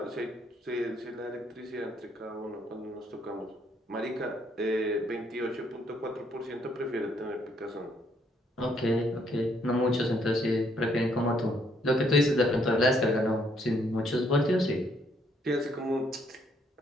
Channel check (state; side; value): normal; both; correlation 0.69